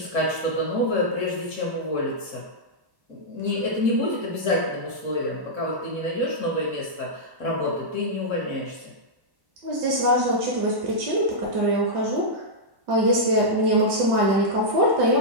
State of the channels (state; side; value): late; left; 1.1 ms